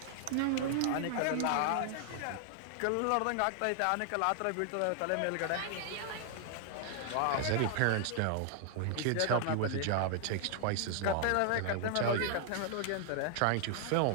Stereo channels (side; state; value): both; different; correlation 0.00